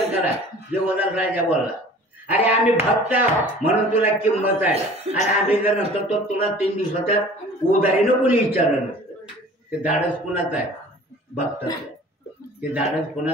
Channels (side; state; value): both; normal; correlation 0.46